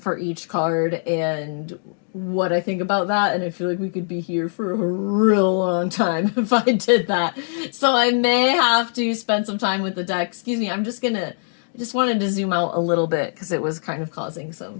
each card and what I think about that, and I feel like we could be here for a real long time if I did that. So I may have to spend some time with the deck. Excuse me, I just wanted to zoom out a little bit because it was kind of causing some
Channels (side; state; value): right; silent; digital silence